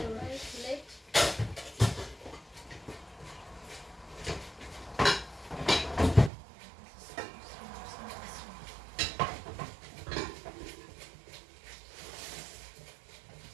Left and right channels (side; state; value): left; drops out; at 6.3 s